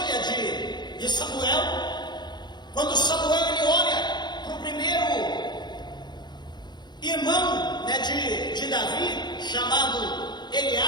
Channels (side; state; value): right; late; 0.21 ms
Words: de Samuel. Quando Samuel ele olha para o primeiro irmão de Davi, chamado